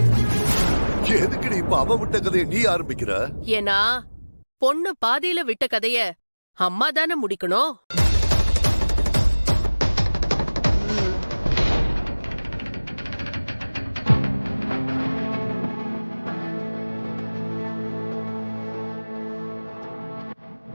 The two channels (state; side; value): inverted; both; correlation -1.00